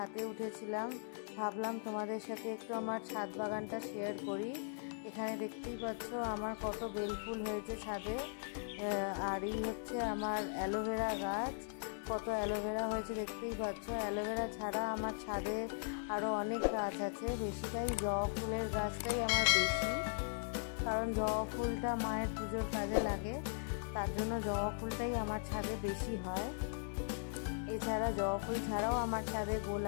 উঠেছিলাম, ভাবলাম তোমাদের সাথে একটু আমার ছাদ বাগানটা শেয়ার করি। এখানে দেখতেই পাচ্ছ আমার কত বেলফুল হয়েছে ছাদে। আর এই হচ্ছে আমার অ্যালোভেরা গাছ, কত অ্যালোভেরা হয়েছে দেখতেই পাচ্ছ। অ্যালোভেরা ছাড়া আমার ছাদে আরও অনেক গাছ আছে, বেশিটাই জবা ফুলের গাছটাই আমার বেশি, কারণ জবা ফুলটা মায়ের পুজোর কাজে লাগে, তার জন্য জবা ফুলটাই আমার ছাদে বেশি হয়। এছাড়া জবা ফুল ছাড়াও আমার ছাদে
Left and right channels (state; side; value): silent; right; digital silence